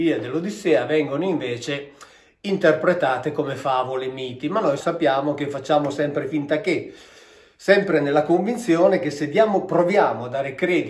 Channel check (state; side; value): identical; both; correlation 1.00